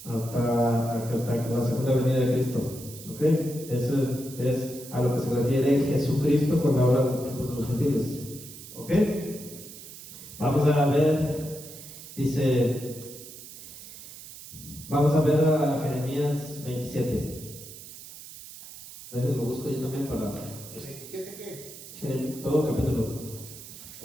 hasta la segunda venida de Cristo. ¿Ok? Eso es a lo que se refiere Jesucristo cuando habla de los tiempos de los gentiles. ¿Ok? Vamos a ver, vamos a ver a Jeremías 27. Lo busco yo también para... ¿27 qué? Todo capítulo.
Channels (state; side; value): noise; right; hiss, 15 dB below the sound